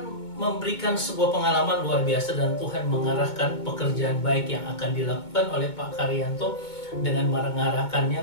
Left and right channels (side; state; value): right; late; 2.2 ms